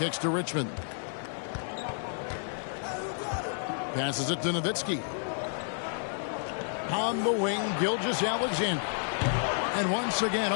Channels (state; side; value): silent; right; 57 dB below the other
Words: to Richmond. Passes it to Nowitzki. On the wing, Gilgeous-Alexander. And once again